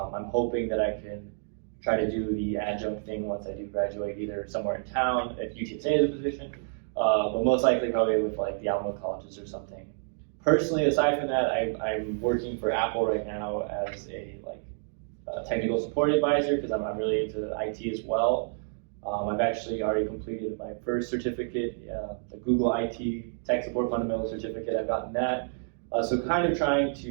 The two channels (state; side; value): silent; left; digital silence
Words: hoping that I can try to do the adjunct thing once I do graduate, either somewhere in town, if UTSA has a position, but most likely probably with like the Alamo colleges or something. Personally, aside from that, I'm working for Apple right now as a technical support advisor because I'm really into IT as well. I've actually already completed my first certificate, the Google IT Tech Support Fundamental Certificate. I've gotten that. So kind of trying